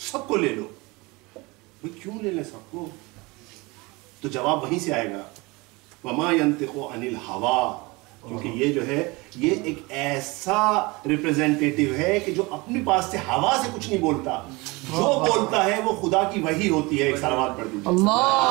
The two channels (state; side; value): quieter; left; 24.7 dB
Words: کو لے لو. کیوں لے لیں سب کو؟ تو جواب وہیں سے آئے گا وما ينطق عن الهوى. کیونکہ یہ جو ہے یہ ایک ایسا ریپریزنٹیٹیو ہے کہ جو اپنے پاس سے ہوا سے کچھ نہیں بولتا، جو بولتا ہے وہ خدا کی وحی ہوتی ہے. ایک صلوات پڑھ دیجیے.